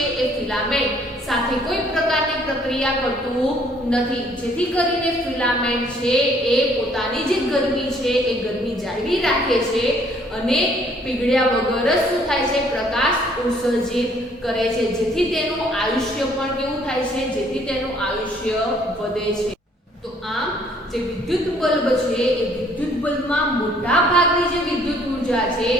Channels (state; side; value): normal; both; correlation 0.62